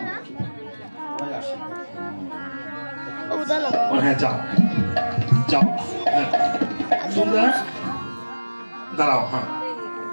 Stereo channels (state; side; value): inverted; both; correlation -1.00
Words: হ্যাঁ যাও যাও, তোমরা দাঁড়াও। হ্যাঁ